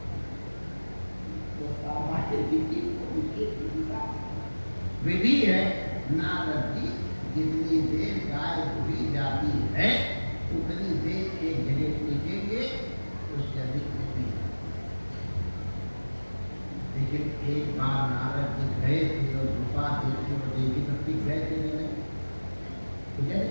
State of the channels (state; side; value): inverted; both; correlation -1.00